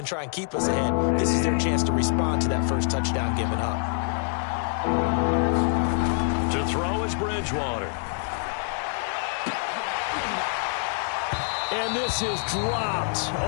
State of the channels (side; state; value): right; silent; 60 dB below the other